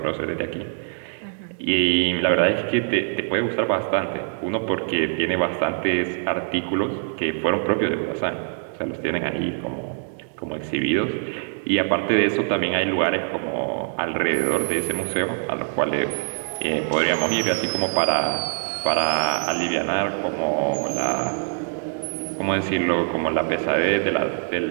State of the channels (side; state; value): left; silent; digital silence